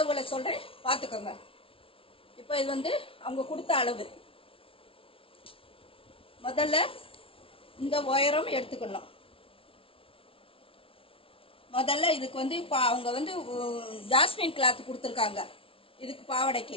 சொல்கிறேன், பார்த்துக்கோங்க. இப்போ இது வந்து அவங்க கொடுத்த அளவு. முதல்ல இந்த உயரம் எடுத்துக்கணும். முதல்ல இதுக்கு வந்து அவங்க வந்து ஜாஸ்மின் கிளாத் கொடுத்துருக்காங்க இதுக்கு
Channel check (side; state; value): right; late; 0.26 ms